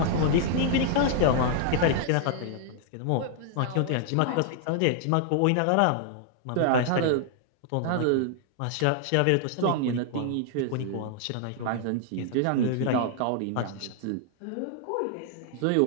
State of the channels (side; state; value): both; different; correlation 0.00